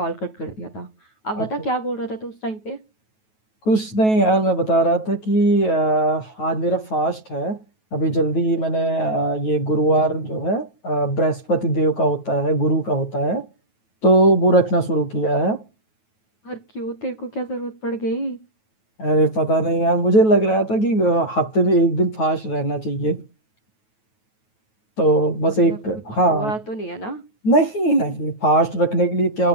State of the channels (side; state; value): right; late; 9.3 ms